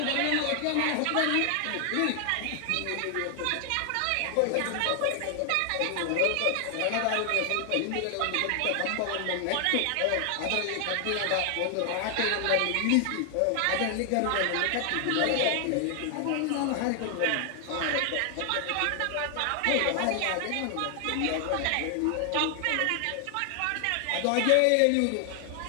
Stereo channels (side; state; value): both; different; correlation 0.00